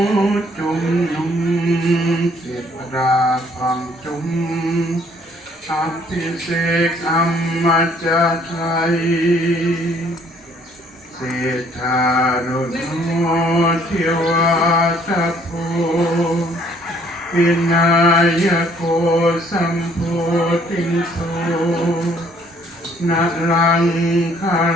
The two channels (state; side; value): normal; both; correlation 0.61